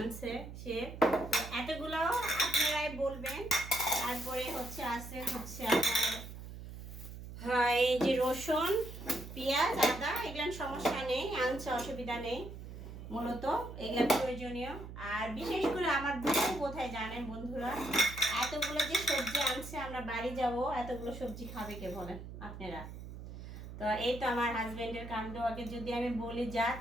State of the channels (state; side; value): noise; right; hum, 11 dB below the sound